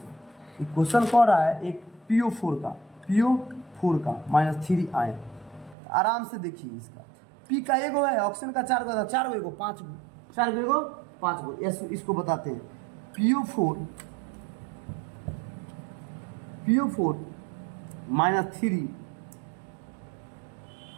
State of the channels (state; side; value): drops out; left; at 5.8 s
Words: क्वेश्चन कह रहा है एक PO4 का -3 आयन। आराम से देखिए, इसका P का एगो है, ऑक्सीजन का 4 गो, 4 गो एगो 5 गो, 4 गो एगो 5 गो। इसको बताते हैं PO4 -3